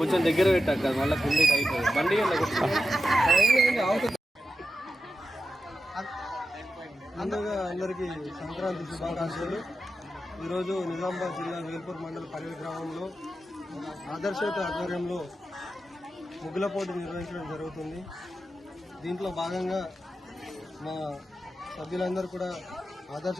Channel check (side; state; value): both; normal; correlation 0.90